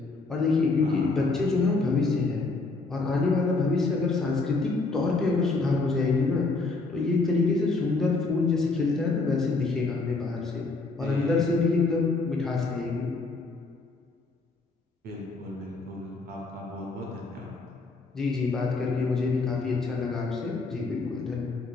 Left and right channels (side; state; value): right; quieter; 3.7 dB